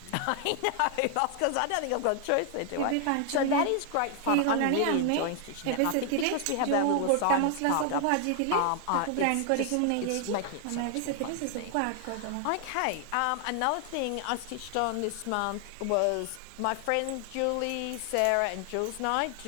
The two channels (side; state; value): both; different; correlation 0.00